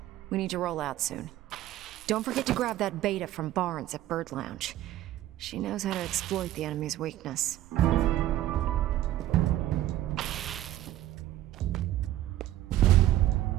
We need to roll out soon. Don't forget to grab that beta from Barnes at Bird Lounge. She knows how to exploit the enemy's weakness.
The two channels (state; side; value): quieter; left; 13.8 dB